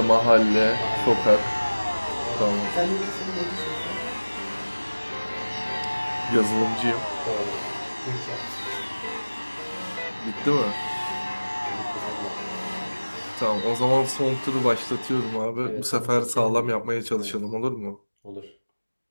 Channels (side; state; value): both; inverted; correlation -1.00